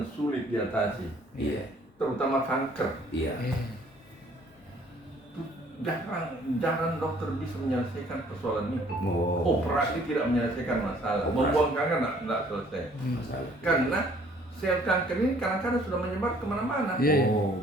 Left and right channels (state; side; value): normal; both; correlation 0.59